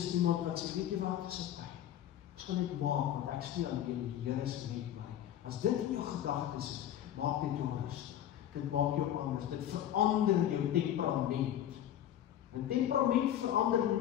iemand wat sê, weet jy wat, dis oké. Ons gaan dit maak, want ek is nie alleen, die Here is met my. As dit in jou gedagtes is, maak dit jou rustig. Dit maak jou anders, dit verander jou temperament. En temperament verander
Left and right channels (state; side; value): quieter; right; 11.2 dB